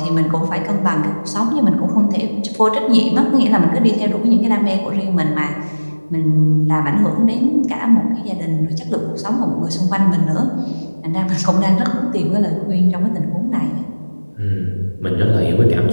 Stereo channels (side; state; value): both; inverted; correlation -1.00